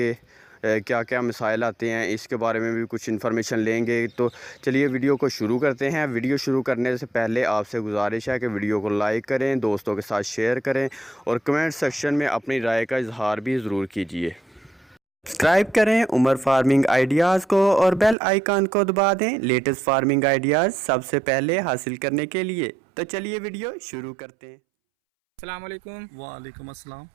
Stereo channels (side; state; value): left; drops out; at 18.2 s